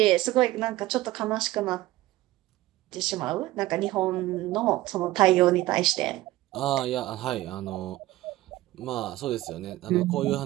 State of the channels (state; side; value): quieter; left; 17.0 dB